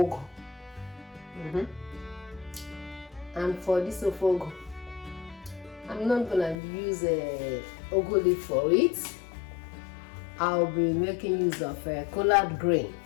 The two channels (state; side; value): drops out; right; at 6.6 s